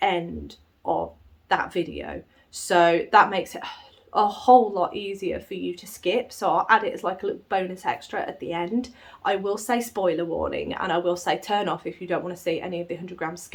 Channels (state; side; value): identical; both; correlation 1.00